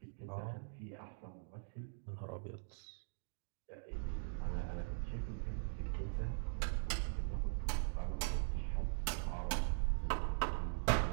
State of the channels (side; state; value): left; silent; digital silence